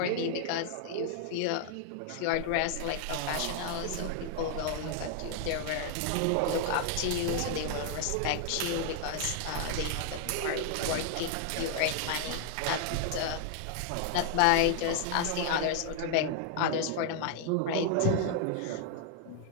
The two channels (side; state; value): both; different; correlation 0.00